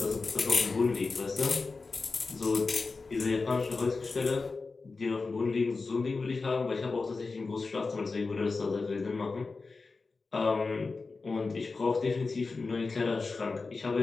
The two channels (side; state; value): right; quieter; 4.1 dB